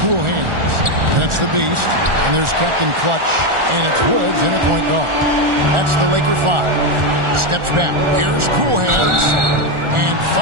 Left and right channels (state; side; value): late; left; 1.4 ms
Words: hands. And it's the Beast. And there's Captain Clutch. And it's Woods in at point guard. That's the Laker 5. Steps back. Here's cool hands. And